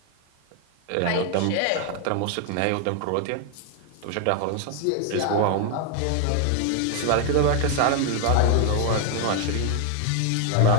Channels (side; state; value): both; different; correlation 0.00